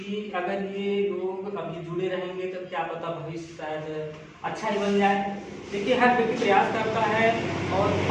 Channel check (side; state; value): both; identical; correlation 1.00